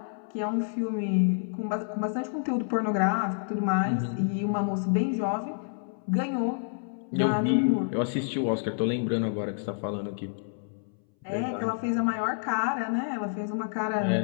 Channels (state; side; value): silent; right; 59 dB below the other